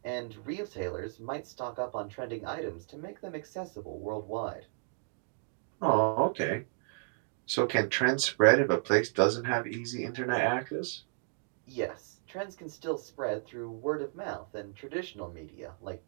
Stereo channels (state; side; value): silent; left; 55 dB below the other